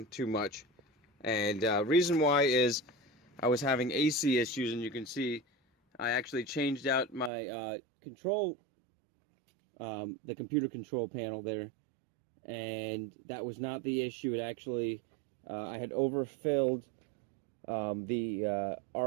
too much. And reason why is I was having AC issues, and you can see I actually changed out my control, the computer control panel there, and that was not the issue. It actually I had overfilled the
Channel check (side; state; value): left; drops out; at 7.3 s